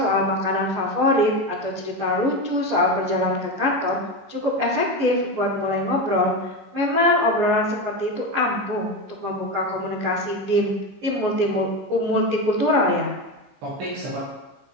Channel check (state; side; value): late; left; 14 ms